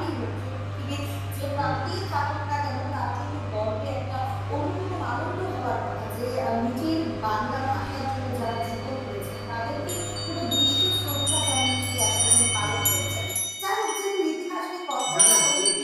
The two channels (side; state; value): both; identical; correlation 1.00